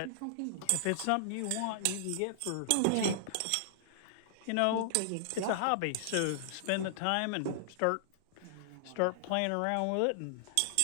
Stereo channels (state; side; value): different; both; correlation -0.01